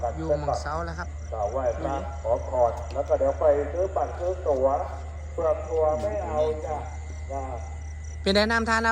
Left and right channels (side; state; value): both; identical; correlation 1.00